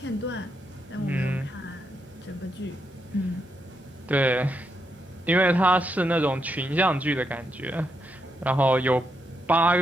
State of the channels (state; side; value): normal; both; correlation 0.81